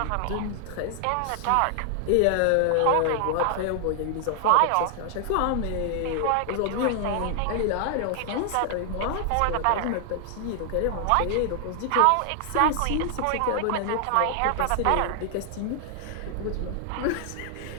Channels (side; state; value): both; different; correlation 0.00